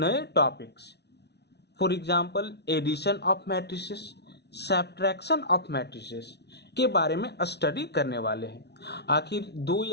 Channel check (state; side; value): late; right; 0.49 ms